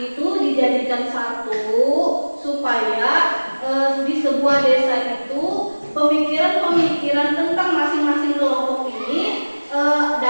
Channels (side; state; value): both; inverted; correlation -1.00